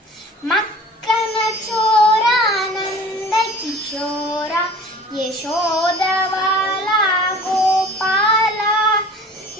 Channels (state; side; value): normal; both; correlation 0.44